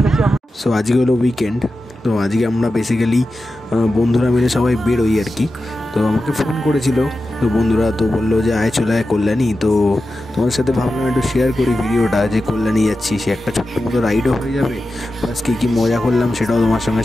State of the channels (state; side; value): normal; both; correlation 0.92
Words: আমরা। সো আজকে হলো উইকেন্ড, তো আজকে আমরা বেসিক্যালি বন্ধুরা মিলে সবাই বেরোই আর কি। তো আমাকে ফোন করেছিল তো বন্ধুরা, তো বললো যে আয় চলে আয় কল্যাণী। তো তোমার সাথে ভাবলাম একটু শেয়ার করি ভিডিওটা, যে কল্যাণী যাচ্ছি, সে একটা ছোট্ট মতো রাইডও হয়ে যাবে, প্লাস কী মজা করলাম সেটাও তোমার সঙ্গে